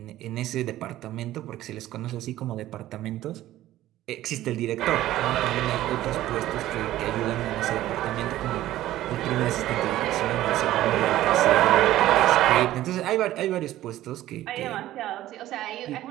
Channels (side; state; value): left; quieter; 14.5 dB